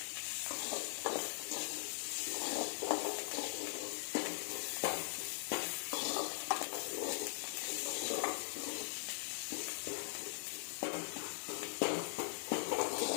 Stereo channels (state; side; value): silent; right; 50 dB below the other